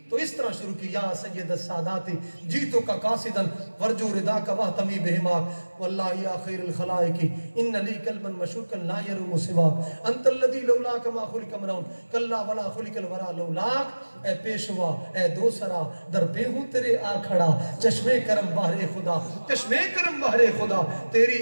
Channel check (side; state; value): both; inverted; correlation -1.00